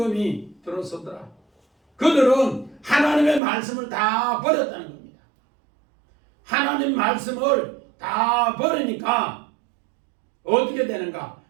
들어서더라. 그들은 하나님의 말씀을 다 버렸다는 겁니다. 하나님 말씀을 다 버리니까 어떻게 되는가?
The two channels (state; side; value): drops out; left; at 3.4 s